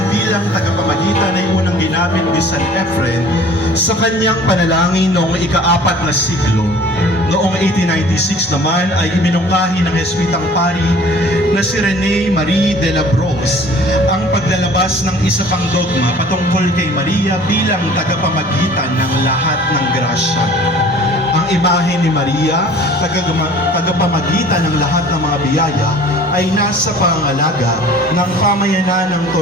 bilang tagapamagitan ay unang ginamit ni San Efren sa kanyang panalangin noong ika-4 na siglo. Noong 1896 naman ay iminungkahi ng Jesuitang pari na si Rene Marie de la Brosse ang paglalabas ng isa pang dogma patungkol kay Maria bilang tagapamagitan ng lahat ng grasya. Ang imahe ni Maria, tagapamagitan ng lahat ng mga biyaya, ay nasa pangangalaga ng pamayanan ng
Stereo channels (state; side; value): normal; both; correlation 0.49